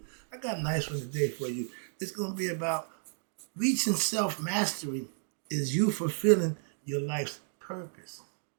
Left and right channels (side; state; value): left; silent; digital silence